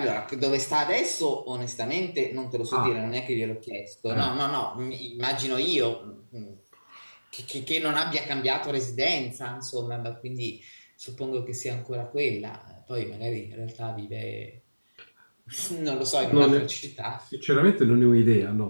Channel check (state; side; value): inverted; both; correlation -1.00